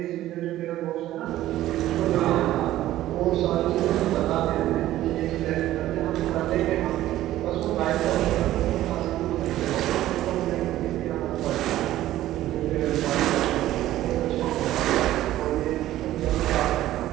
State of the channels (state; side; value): quieter; left; 14.3 dB